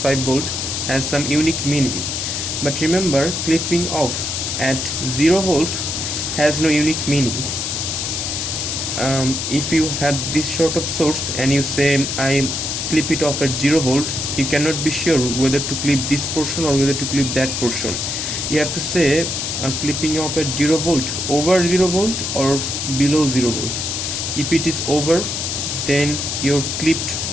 volt has some unique meaning. But remember, clipping off at 0 volt has no unique meaning. If you have this sort of source and you say I clip it off at 0 volt, you cannot be sure whether to clip this portion or whether to clip that portion. You have to say clipping off at 0 volt over 0 volt or below 0 volt. If it is over, then your clipped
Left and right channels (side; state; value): left; noise; hiss, 2 dB below the sound